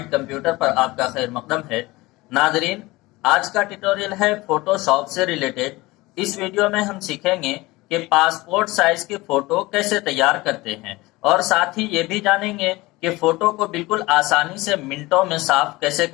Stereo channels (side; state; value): right; quieter; 20.9 dB